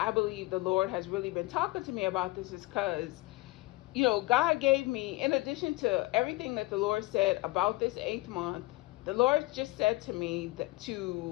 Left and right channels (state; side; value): quieter; right; 21.4 dB